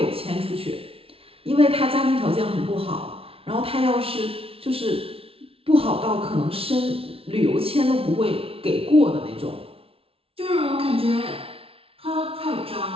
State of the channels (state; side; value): late; left; 0.27 ms